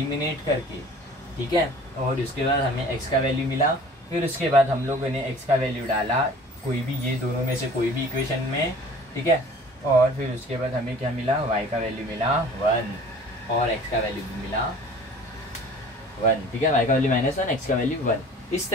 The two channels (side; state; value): both; normal; correlation 0.46